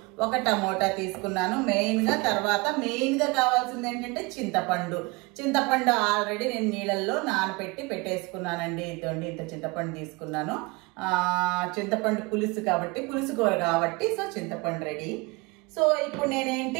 1 టమోటా తీసుకున్నాను తర్వాత మెయిన్గా కావాల్సింది ఏంటంటే చింతపండు ఆల్రెడీ నేను నీళ్ళల్లో నానబెట్టి పెట్టేసుకున్నానండి. ఇదండి, ఇంత చింతపండు తీసుకున్నాను. చింతపండు పులుసు కాబట్టి, పులుసు కూర కాబట్టి సో చింతపండు రెడీ. సో ఇప్పుడు నేనేంటి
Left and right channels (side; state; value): left; quieter; 26.1 dB